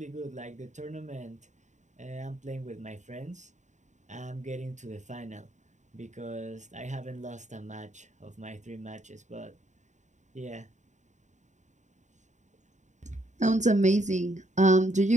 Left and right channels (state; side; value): late; left; 0.35 ms